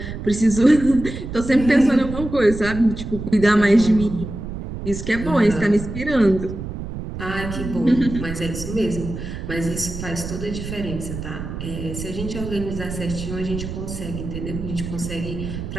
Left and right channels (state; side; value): noise; right; rumble, 7 dB below the sound